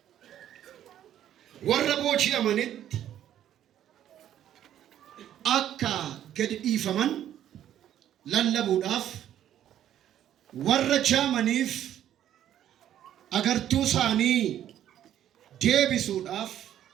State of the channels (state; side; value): quieter; left; 11.1 dB